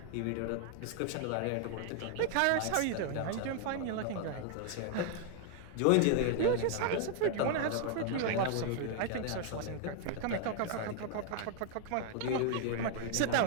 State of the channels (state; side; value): different; both; correlation 0.00